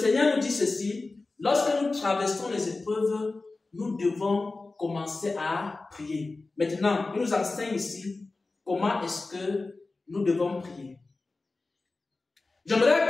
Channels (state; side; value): quieter; right; 3.5 dB